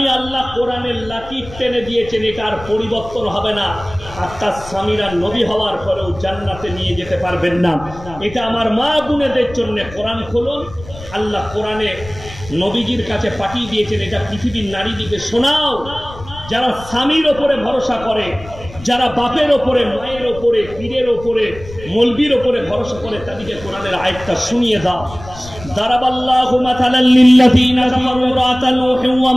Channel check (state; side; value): noise; left; rumble, 16 dB below the sound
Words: আল্লাহ কোরআনের লাকির টেনে দিয়েছেন, এটা আর পরিবর্তন হবে না। আর তার স্বামীরা নবী হওয়ার পরেও জান্নাতে নিয়ে যেতে পারবেন না। এটা আমার মা বোনেদের জন্য। কোরআন খুলুন, আল্লাহ কোরআনে নবীজির কাছে পাঠিয়ে দিয়েছেন, এটা পৃথিবীর নারীদিকে শোনাও। যারা স্বামীর ওপরে ভরসা করে, যারা বাপের ওপরে, মায়ের ওপরে, পীরের ওপরে, মৌলবীর ওপরে ভরসা করে, তাদেরকে কোরআনের আয়াতটা শুনিয়ে দাও। দারাবাল্লাহু মাসালাল লিল্লাযীনা কাফারু ইমরাআতা নূহিন ওয়া